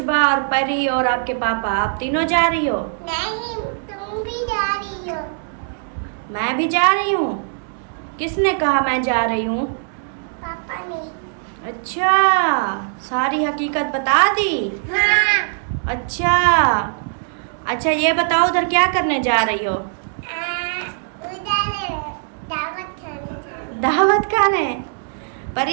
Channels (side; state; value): left; silent; digital silence